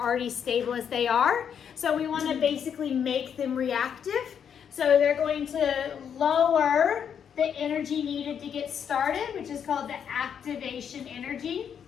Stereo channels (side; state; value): right; quieter; 8.0 dB